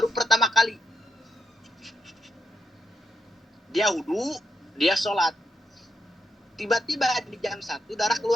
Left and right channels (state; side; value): normal; both; correlation 0.83